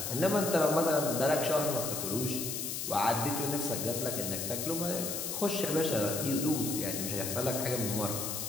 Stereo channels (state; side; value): noise; left; hiss, 3 dB below the sound